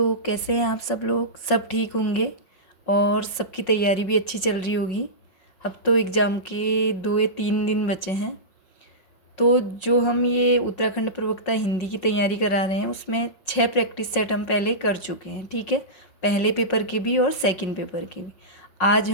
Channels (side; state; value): right; late; 5.4 ms